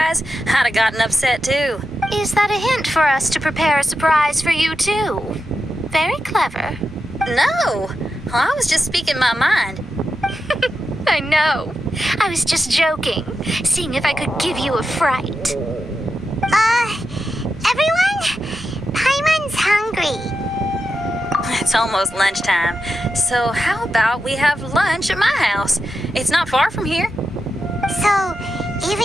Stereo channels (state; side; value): normal; both; correlation 0.88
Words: I'd have gotten upset too. Is that a hint for us to prepare a surprise for you, too? Very clever. No! I was just speaking my mind. I know. I was just joking, seeing if I could give you a fright. Everyone? Paimon's hungry. It's almost lunchtime, so how about we have lunch at my house? It's not far from here. So,